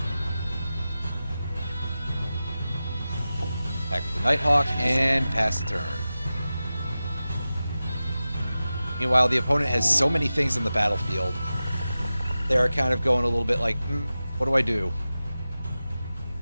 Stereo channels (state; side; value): inverted; both; correlation -0.94